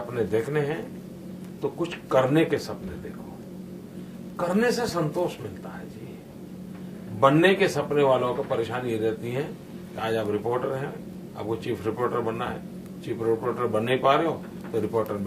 देखने हैं तो कुछ करने के सपने देखो। करने से संतोष मिलता है जी। बनने के सपने वालों को परेशानी ये रहती है कि आज आप रिपोर्टर हैं, आपको चीफ रिपोर्टर बनना है, चीफ रिपोर्टर बन नहीं पा रहे हो तो रिपोर्टर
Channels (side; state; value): both; identical; correlation 1.00